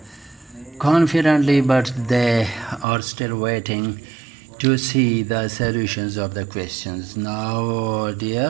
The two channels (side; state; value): left; drops out; at 2.9 s